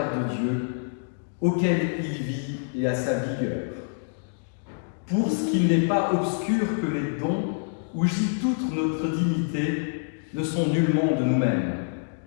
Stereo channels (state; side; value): silent; right; digital silence